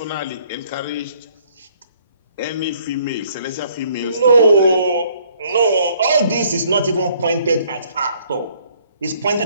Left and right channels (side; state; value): both; inverted; correlation -0.63